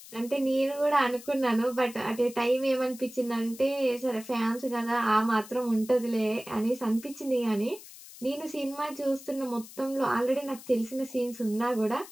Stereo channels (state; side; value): noise; left; hiss, 17 dB below the sound